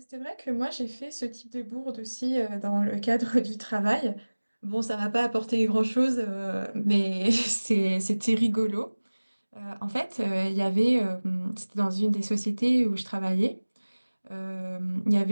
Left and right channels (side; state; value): both; inverted; correlation -1.00